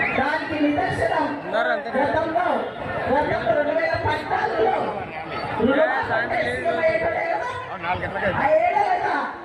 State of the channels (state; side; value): identical; both; correlation 1.00